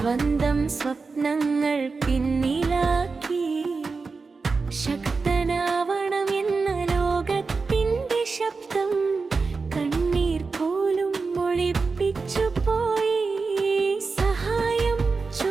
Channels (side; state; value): left; quieter; 4.4 dB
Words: സ്വപ്നങ്ങൾ പിന്നിലാക്കി, ശക്തനാവണം എന്ന ലോകത്തിൻ്റെ ശബ്ദം കണ്ണീർ പോലും ഒളിപ്പിച്ചു പോയി. സഹായം